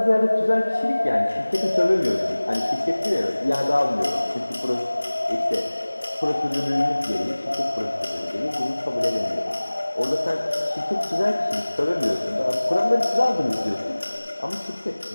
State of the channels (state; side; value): inverted; both; correlation -1.00